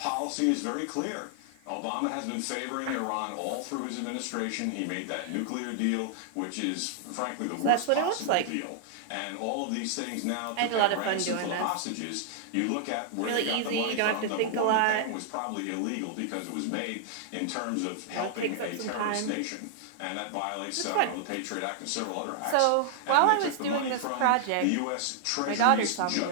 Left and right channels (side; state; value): both; different; correlation -0.01